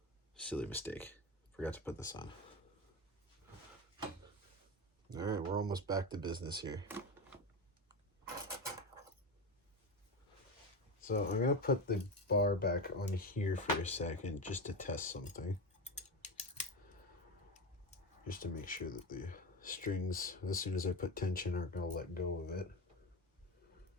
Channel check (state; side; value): normal; both; correlation 0.19